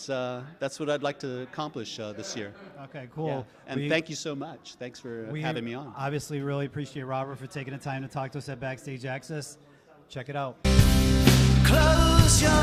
what I'd like to accomplish this year. Okay, cool. Yeah. And thank you so much. Thanks for having me on. Obviously, really appreciate Robert for taking the time to talk to us at Backstage Access. Check it out. Close your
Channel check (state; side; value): identical; both; correlation 1.00